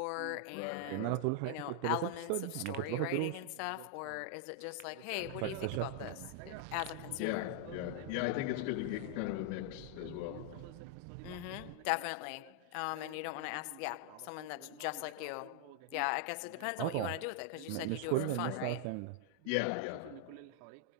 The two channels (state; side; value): different; both; correlation 0.00